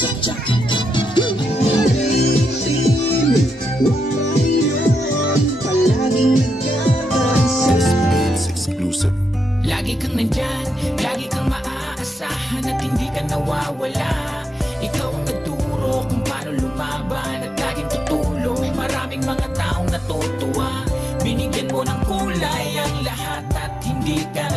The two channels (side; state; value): both; normal; correlation 0.84